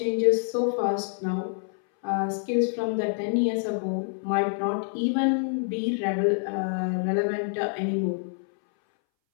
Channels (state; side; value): silent; right; 60 dB below the other